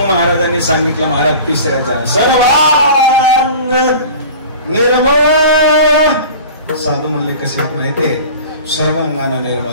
महाराजांनी सांगितलं, महाराज तिसऱ्याचा सर्वांग निर्मळ. साधू म्हणले कसे माहितीये? सर्वांगाना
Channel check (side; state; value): both; inverted; correlation -0.39